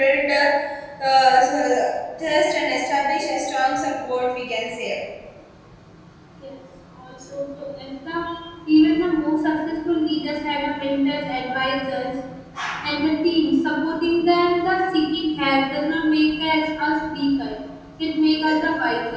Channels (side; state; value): both; identical; correlation 1.00